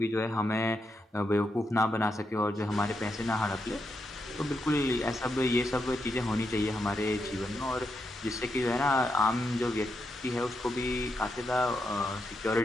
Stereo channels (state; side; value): normal; both; correlation 0.83